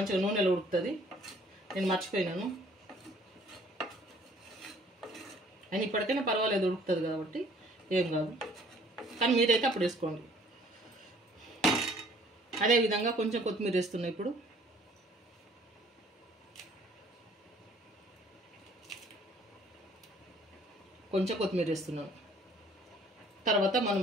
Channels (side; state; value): both; normal; correlation 0.57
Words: నూనెలో ఉడుకుతుంది. నేను మర్చిపోయినాను. అని ఇప్పటికైనా పర్వాలేదు, ఉడుకుతుంది కాబట్టి ఏం కాదు. కానీ మీరైతే అప్పుడు వేసుకోండి. అదేవిధంగా కొంచెం కొత్తిమీర వేస్తున్నా ఇప్పుడు. కొంచెం కొత్తిమీర వేస్తున్నాను. తర్వాత మనం